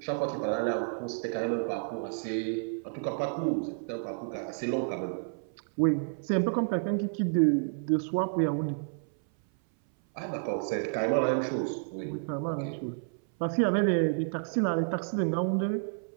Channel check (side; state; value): left; silent; 58 dB below the other